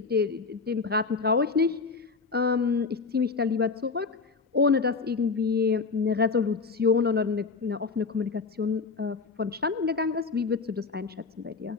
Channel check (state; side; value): quieter; right; 4.7 dB